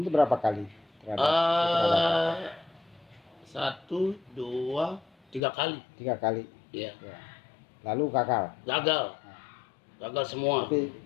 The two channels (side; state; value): right; drops out; at 5.4 s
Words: berapa kali? 1, 2, 3 kali. 3 kali. Iya. Lalu gagal. Gagal semua. Tapi